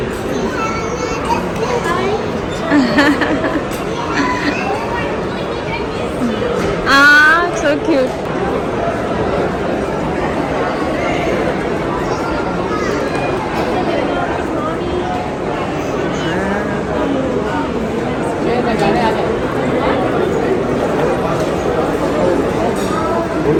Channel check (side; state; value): both; identical; correlation 1.00